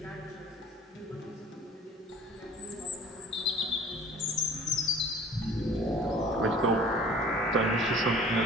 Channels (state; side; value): normal; both; correlation 0.46